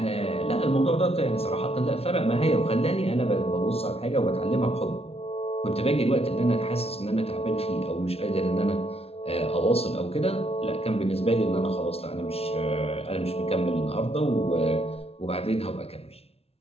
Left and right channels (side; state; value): right; late; 0.29 ms